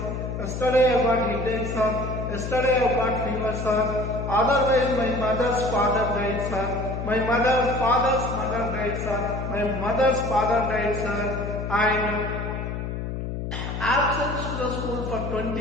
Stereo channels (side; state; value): left; noise; hum, 5 dB below the sound